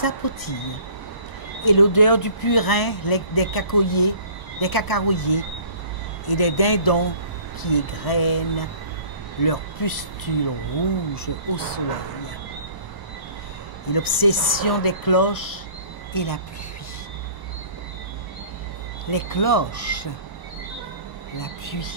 Et l'odeur du purin, des cacaroyers, et des dindons qui égrènent leurs pustules rouges au soleil. Et l'obsession des cloches et la pluie. Les cloches, la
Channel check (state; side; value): late; left; 1.0 ms